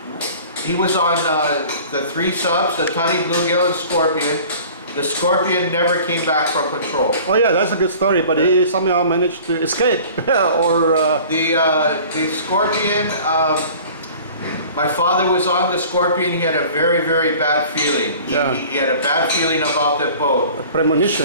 the 3 subs, the Tunny, Bluegill, and Scorpion. The Scorpion never came back from patrol. Oh yeah, that's a good story, but he somehow managed to escape. The Scorpion, my father was on the Scorpion. He had a very, very bad feeling. He had a bad feeling about the boat. A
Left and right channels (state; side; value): inverted; both; correlation -0.45